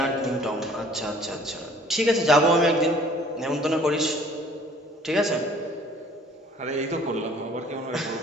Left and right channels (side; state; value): both; normal; correlation 0.54